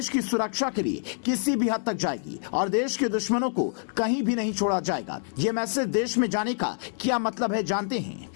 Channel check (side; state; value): right; silent; digital silence